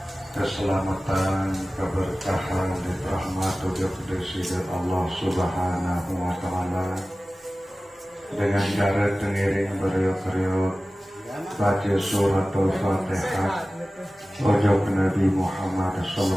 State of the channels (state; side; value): normal; both; correlation 0.97